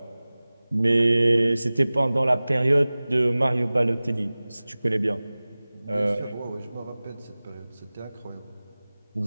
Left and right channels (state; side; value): inverted; both; correlation -0.98